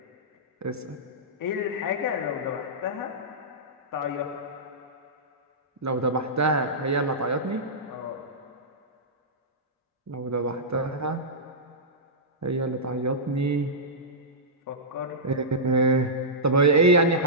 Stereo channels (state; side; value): normal; both; correlation -0.14